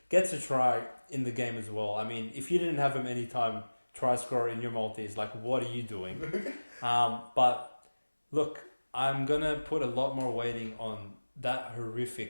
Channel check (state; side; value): inverted; both; correlation -1.00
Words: Gets a try in the game as well. I mean, if you didn't have him anytime try scorer in your multis, what are you doing? But look, I'm going to put a lot more weighting on that